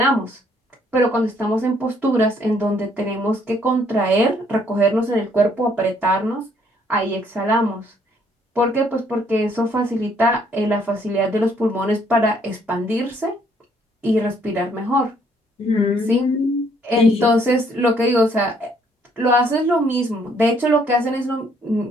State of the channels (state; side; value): normal; both; correlation 0.66